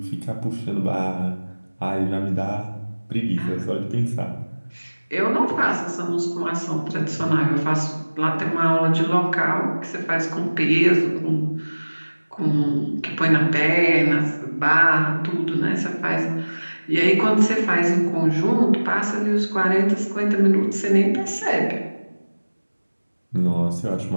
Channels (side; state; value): both; inverted; correlation -1.00